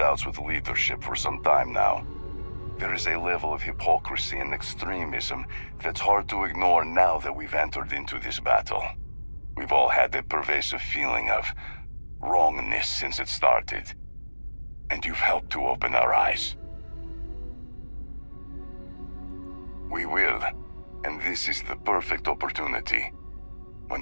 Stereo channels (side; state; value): both; inverted; correlation -1.00